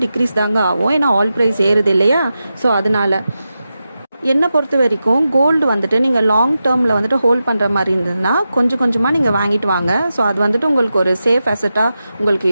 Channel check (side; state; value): both; inverted; correlation -0.91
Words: டிக்ரீஸ் தாங்க ஆகும். ஏன்னா ஆயில் ப்ரைஸ் ஏறுது இல்லையா. ஸோ அதனால என்னை பொறுத்த வரைக்கும் கோல்டு வந்துட்டு நீங்கள் லாங் டேர்மில் வந்துட்டு ஹோல்ட் பண்ணுற மாதிரி இருந்ததுன்னா கொஞ்சம் கொஞ்சமாக நீங்கள் வாங்கிட்டு வாங்க. ஸோ அது வந்துட்டு உங்களுக்கு ஒரு சேஃப் அசட்டாக உங்களுக்கு